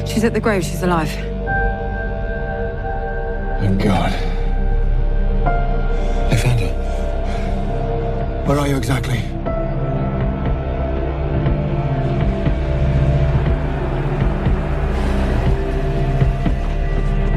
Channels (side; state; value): both; identical; correlation 1.00